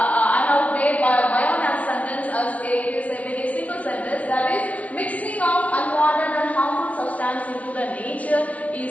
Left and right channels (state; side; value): late; right; 0.067 ms